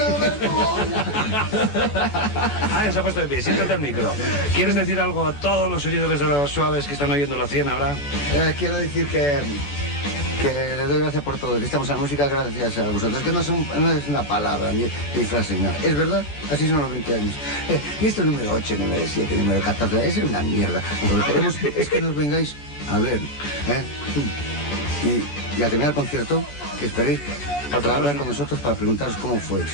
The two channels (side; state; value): right; late; 14 ms